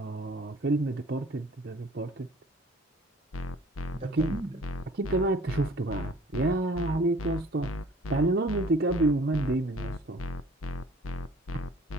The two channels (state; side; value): normal; both; correlation 0.52